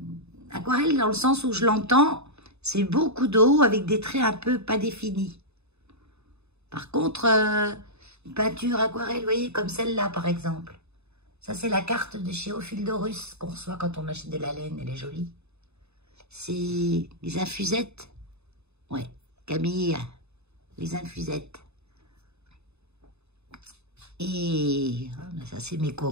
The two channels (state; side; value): late; left; 0.80 ms